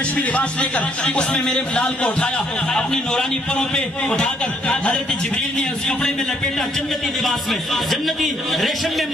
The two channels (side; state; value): both; normal; correlation 0.68